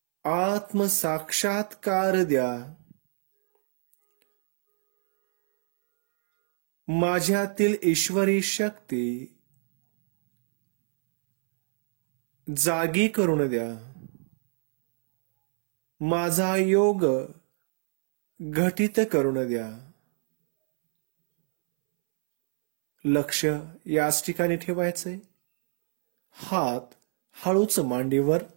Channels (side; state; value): left; silent; 62 dB below the other